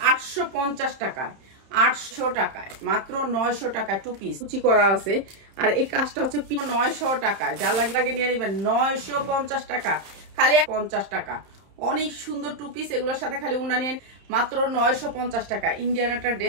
850 টাকায়, 800 টাকায় মাত্র 900 টাকায় 2 পিস কুচি করা আছে। আর এই কাজটা হচ্ছে 900 টাকায়, যা লাগে নিয়ে নেবেন। 950 টাকা খালি 50 টাকা, অনেক সুন্দর 2 পিস। এগুলোর সাথে খালি উন্না নিয়ে মাত্র 950 টাকা। ইন্ডিয়ান একটা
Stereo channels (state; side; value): late; left; 31 ms